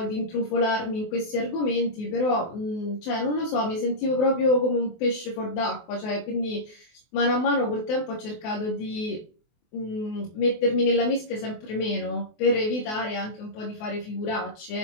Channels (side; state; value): right; late; 24 ms